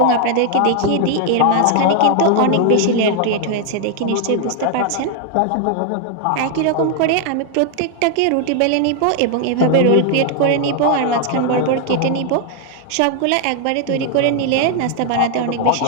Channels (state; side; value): different; both; correlation 0.00